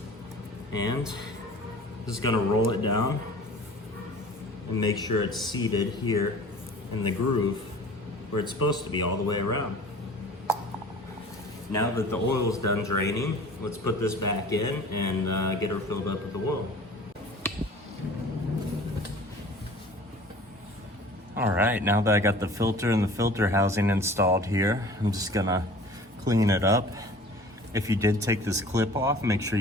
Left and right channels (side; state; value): both; normal; correlation 0.45